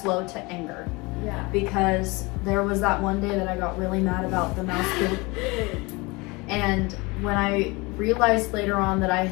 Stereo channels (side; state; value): right; quieter; 25.2 dB